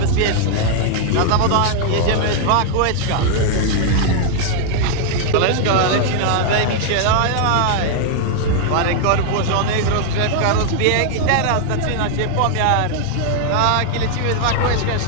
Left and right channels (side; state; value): both; different; correlation 0.00